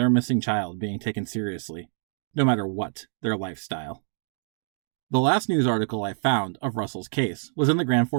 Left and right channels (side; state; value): left; silent; digital silence